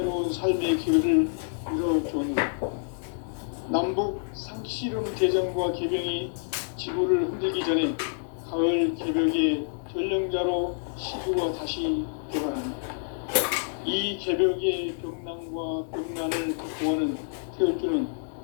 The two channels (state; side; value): silent; right; 60 dB below the other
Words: 삶의 기회를 이뤄주었느라 남북 상씨름 대전과 개병이 지구를 흔들기 전에 가을 개벽의 전령자로 시구가 다시 개발합니다. 이 개벽의 벽난과 벽난을 극복하는 태울주는